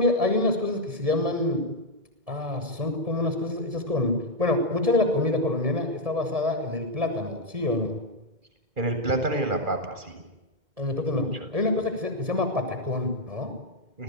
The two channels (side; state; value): left; late; 1.7 ms